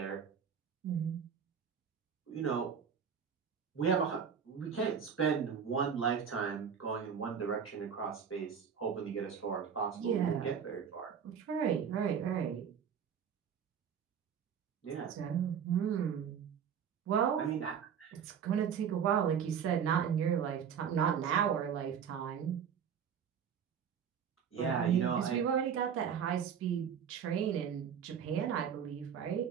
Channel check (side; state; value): left; quieter; 7.6 dB